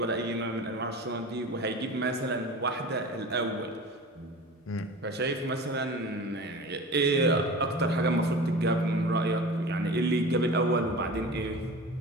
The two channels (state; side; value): normal; both; correlation 0.35